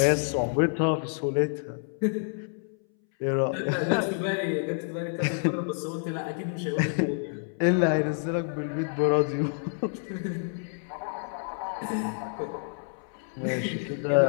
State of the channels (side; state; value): right; silent; 59 dB below the other